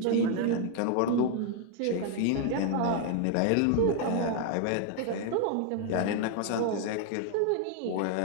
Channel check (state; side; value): different; both; correlation 0.00